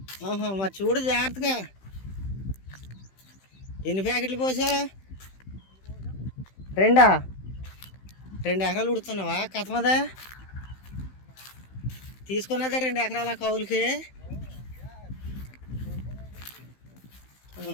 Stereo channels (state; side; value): late; right; 15 ms